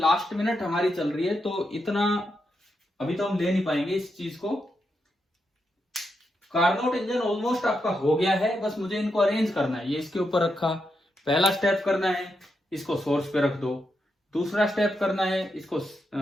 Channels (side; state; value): both; normal; correlation 0.84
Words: मिनट हमारी चल रही है तो इतना अभी तो हम ले नहीं पाएंगे इस चीज को। कार्नोट इंजन ऑलमोस्ट आपका हो गया है, बस मुझे इनको अरेंज करना है। ये इसके ऊपर रखा, पहला स्टेप करना है इसको सोर्स पे रख दो, दूसरा स्टेप करना है इसको